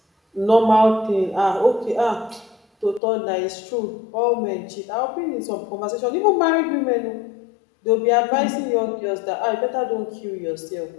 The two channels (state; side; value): drops out; right; at 3.0 s